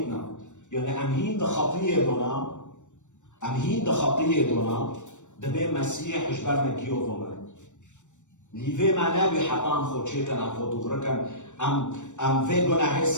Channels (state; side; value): late; right; 0.85 ms